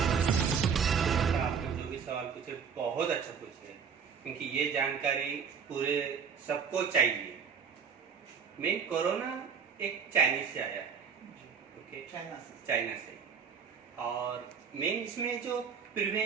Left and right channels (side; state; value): left; quieter; 6.5 dB